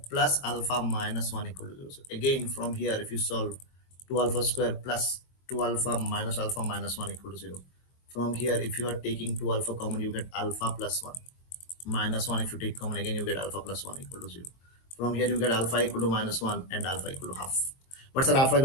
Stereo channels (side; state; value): right; late; 22 ms